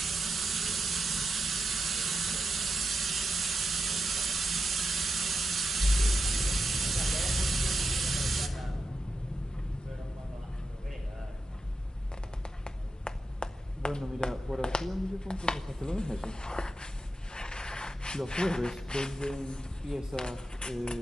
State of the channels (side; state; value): both; normal; correlation 0.87